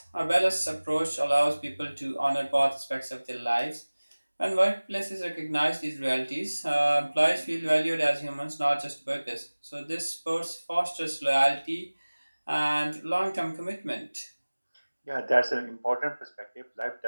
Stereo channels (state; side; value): inverted; both; correlation -1.00